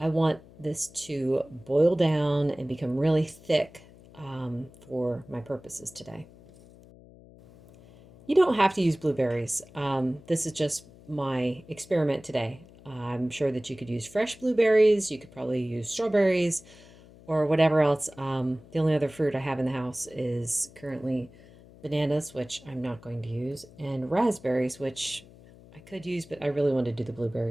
want this to boil down and become really thick for my purposes today. You don't have to use blueberries. This is just my experiment today. I'm sure that you could use fresh blueberries. You could probably use strawberries or whatever else. The only other fruit I have in the house is currently bananas, which I'm not going to use, and raspberries, which I could use, but I really want to do the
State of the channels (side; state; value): left; noise; hum, 22 dB below the sound